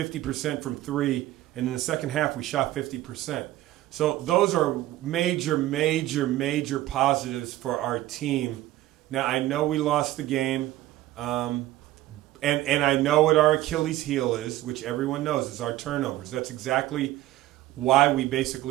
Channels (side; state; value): left; quieter; 15.4 dB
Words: from 3. And in the second half, we shot 50%. So those are major, major, major positives for our team. Now, I know we lost the game, and I know what our Achilles heel is, which everyone knows, is our turnovers. That's exactly why we